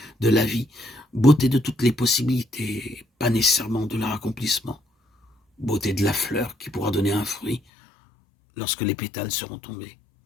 de la vie, beauté de toutes les possibilités, pas nécessairement de leur accomplissement. Beauté de la fleur qui pourra donner un fruit lorsque les pétales seront tombés.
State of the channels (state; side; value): drops out; right; at 7.6 s